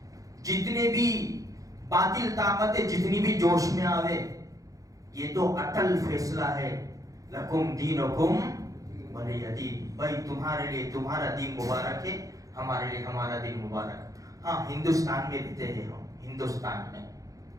جتنے بھی باطل طاقتیں جتنی بھی جوش میں آوے، یہ تو اٹل فیصلہ ہے، لکم دینکم ولی دین، بھائی تمہارے لیے تمہارا دین مبارک ہے، ہمارے لیے ہمارا دین مبارک۔ ہاں ہندوستان میں رہتے ہیں ہم، ہندوستان میں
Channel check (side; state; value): left; late; 0.17 ms